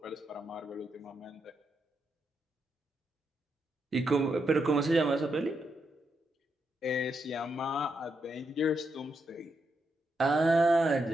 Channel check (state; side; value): normal; both; correlation 0.82